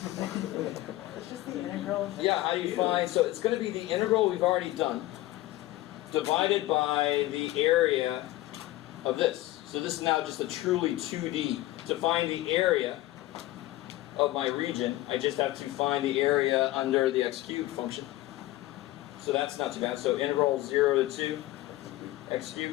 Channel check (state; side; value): quieter; right; 16.7 dB